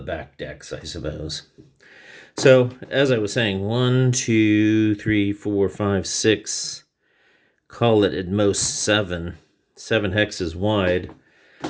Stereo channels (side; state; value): both; identical; correlation 1.00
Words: back decks, I suppose. So, as I was saying, 1, 2, 3, 4, 5, 6, call it at most 7 hexes wide